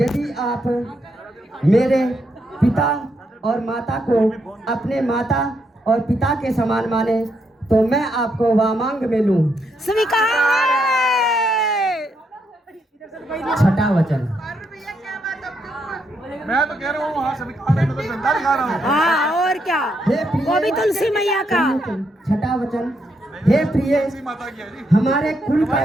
आप मेरे पिता और माता को अपने माता और पिता के समान माने तो मैं आपको वामांग में लूं। स्वीकार है। छठा वचन मैं तो कह रहा हूँ वहाँ स्वीकार है, मैं तो झंडा दिखा रहा हूँ। हाँ और क्या, वो भी तुलसी मैया का। छठा वचन हे प्रिय माता की है जी। हमारे कुल का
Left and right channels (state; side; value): normal; both; correlation 0.78